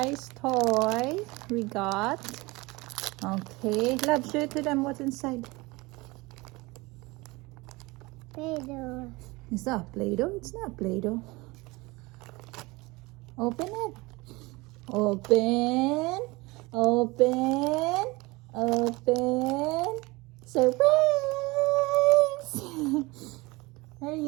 toy we got. Okay. Love, show it to them what's inside. Play-Doh. Is that Play-Doh? It's not Play-Doh. Open it. Open. Open. Open. Surprise! There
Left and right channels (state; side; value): quieter; left; 23.2 dB